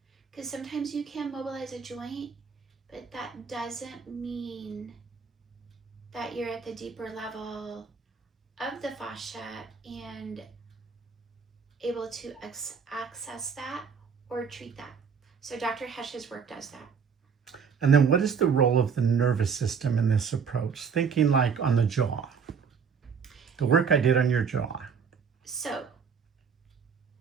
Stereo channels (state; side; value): quieter; left; 6.2 dB